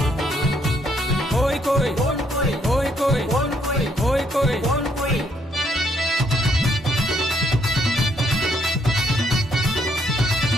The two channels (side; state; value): both; normal; correlation 0.71